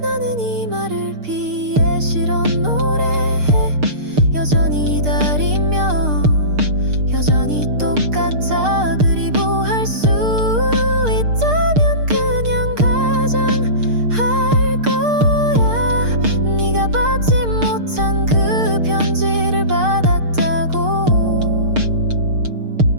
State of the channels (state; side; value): late; left; 6.6 ms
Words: 나는 이 말을 피해 실어 노래해. 여전히 기다리며 여전히 똑같아. 그리고 할 수 있다면 그냥 가장할 거야. 네가 받지 못한 그 편지를 받았다고.